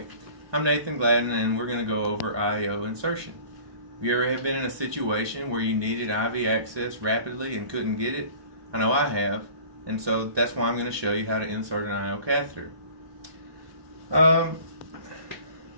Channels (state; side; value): late; left; 1.2 ms